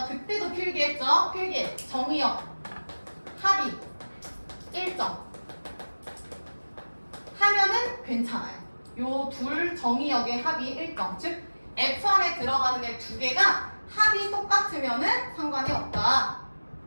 그때도 필기했죠? 필기 정의역 합이 일정 하면은 괜찮아요. 요 둘 정의역의 합이 일정 즉 F 안에 들어가는 애 두 개가 합이 똑같으면은 상관이 없다.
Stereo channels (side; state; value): both; inverted; correlation -1.00